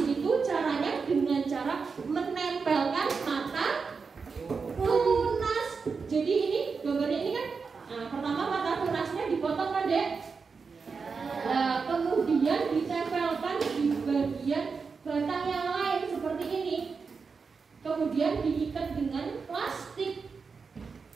itu caranya dengan cara menempelkan mata tunas. Jadi ini gambarnya ini kan, nah, pertama mata tunasnya dipotong kan dek? Nah, kemudian ditempelkan di bagian batang yang lain seperti ini. Kemudian diikat dengan plastik.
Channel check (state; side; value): quieter; left; 5.1 dB